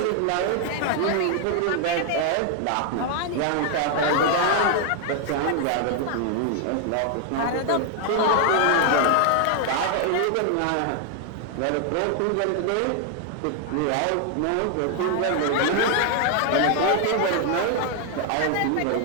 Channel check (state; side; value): different; both; correlation 0.00